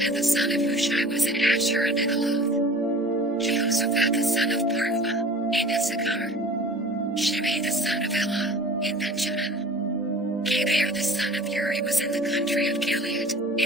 the son of Hushai was in Asher and in Aloth. Jehoshaphat the son of Parua, in Issachar. Shimei the son of Elah, in Benjamin. Geber the son of Uri was in the country of Gilead,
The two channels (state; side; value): normal; both; correlation 0.43